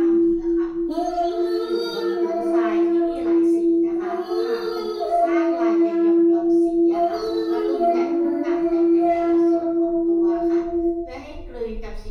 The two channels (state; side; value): identical; both; correlation 1.00